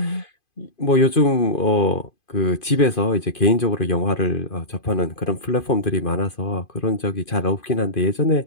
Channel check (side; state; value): right; late; 2.5 ms